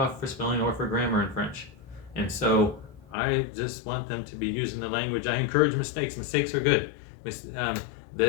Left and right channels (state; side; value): drops out; right; at 3.2 s